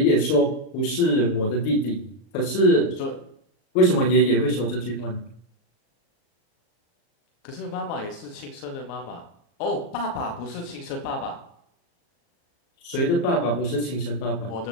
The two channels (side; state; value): right; late; 37 ms